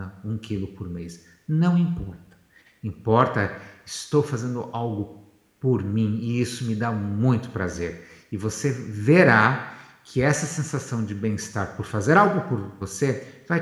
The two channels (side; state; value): both; identical; correlation 1.00